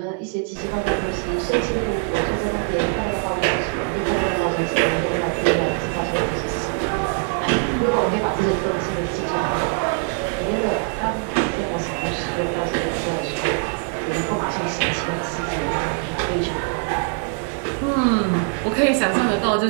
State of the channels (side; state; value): left; quieter; 32.3 dB